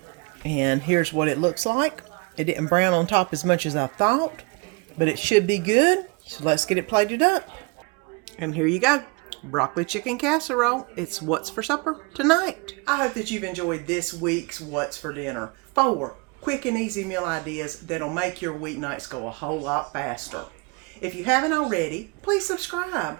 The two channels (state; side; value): quieter; left; 29.3 dB